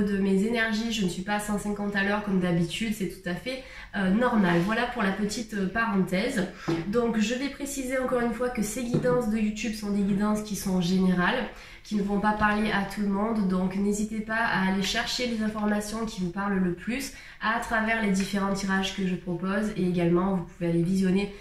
mes énergies, je ne suis pas à 150 à l'heure comme d'habitude, c'est tout à fait normal. Voilà pour la petite parenthèse. Donc je vais préciser encore une fois que ces guidances de YouTube sont des guidances qui sont générales, qui ne vont pas parler à tout le monde. Donc n'hésitez pas à aller chercher les informations qui vous parlent le plus à travers les différents tirages que je propose. Et également, vous pouvez aller visionner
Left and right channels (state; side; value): identical; both; correlation 1.00